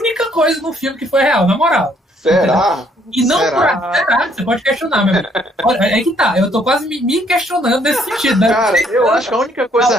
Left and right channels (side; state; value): both; normal; correlation 0.66